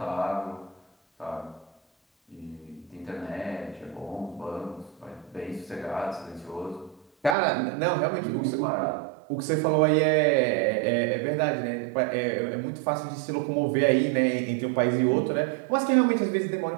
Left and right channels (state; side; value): drops out; left; at 7.4 s